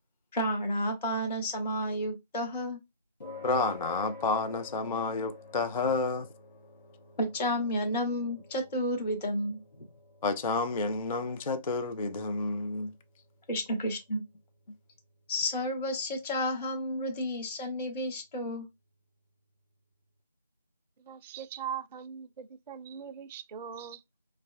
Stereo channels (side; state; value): both; inverted; correlation -0.33